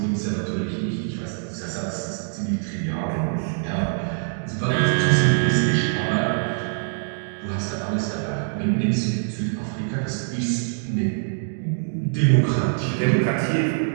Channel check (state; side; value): silent; left; digital silence